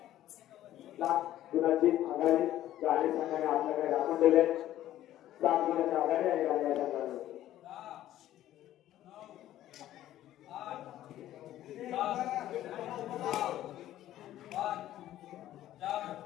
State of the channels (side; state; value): right; quieter; 13.2 dB